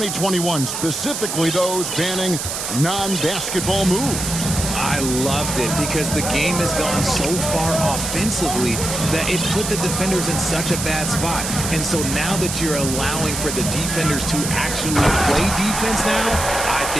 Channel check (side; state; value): right; noise; hiss, 4 dB below the sound